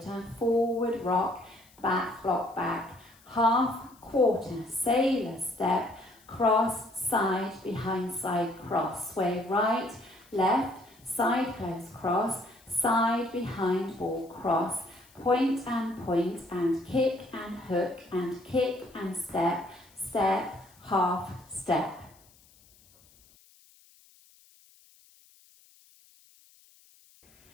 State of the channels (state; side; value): noise; left; hiss, 28 dB below the sound